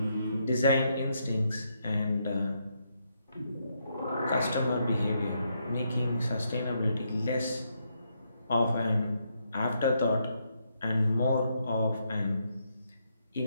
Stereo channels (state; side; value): inverted; both; correlation -0.78